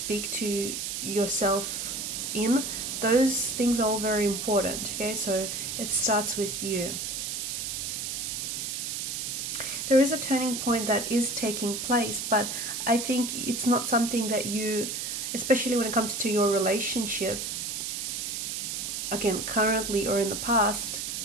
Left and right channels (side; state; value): right; noise; hiss, 3 dB below the sound